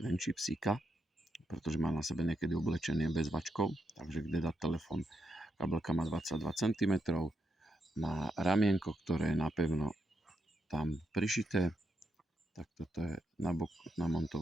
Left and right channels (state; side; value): normal; both; correlation 0.82